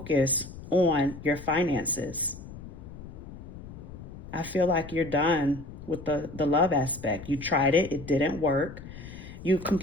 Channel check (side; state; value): left; noise; rumble, 14 dB below the sound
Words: on your finances. I feel like you're done with the love aspect. You tried it, it didn't work. You